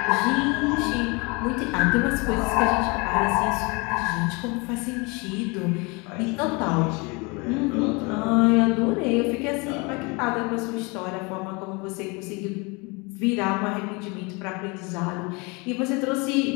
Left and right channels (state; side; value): quieter; right; 28.5 dB